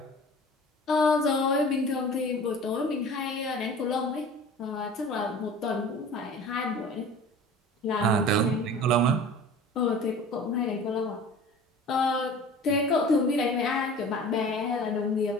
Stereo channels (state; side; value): normal; both; correlation 0.41